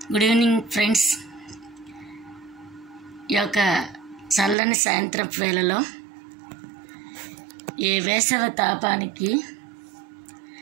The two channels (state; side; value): drops out; left; at 4.5 s